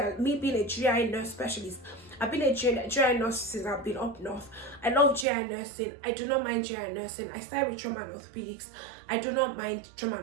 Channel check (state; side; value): drops out; left; at 5.2 s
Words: me being a GI nurse specialist, I've been a GI nurse since I've been up north. I love GI nursing. I do not mind GI nursing. I started with trauma and orthopedics. I do not mind trauma